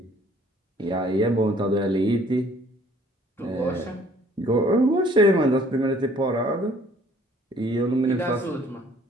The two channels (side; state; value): both; normal; correlation 0.58